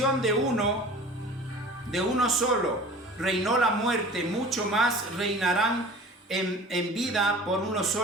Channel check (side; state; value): both; normal; correlation 0.42